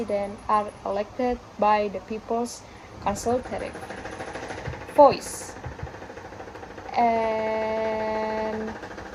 are elected by the people's consultative voice. And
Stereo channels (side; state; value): both; identical; correlation 1.00